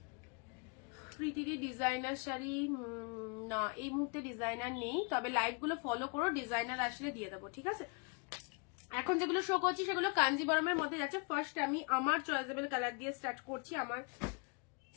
প্রীতিদি ডিজাইনার শাড়ি না এই মুহূর্তে ডিজাইনার নেই, তবে লাইভ গুলো ফলো করো, ডিজাইনার আসলে দিয়ে দেবো, ঠিক আছে। এখন যেগুলো শো করছি সেগুলো কাঞ্জিবরমের মধ্যে যাচ্ছে। ফার্স্ট আমি আমার চয়েসেবল কালার দিয়ে স্টার্ট করছি, আমার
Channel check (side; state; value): right; quieter; 33.5 dB